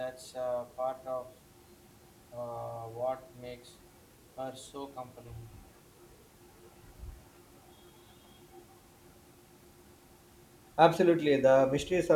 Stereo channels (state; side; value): identical; both; correlation 1.00